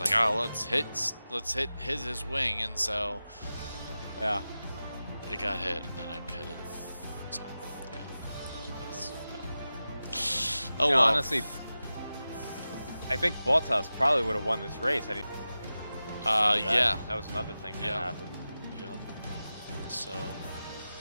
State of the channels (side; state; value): both; inverted; correlation -0.94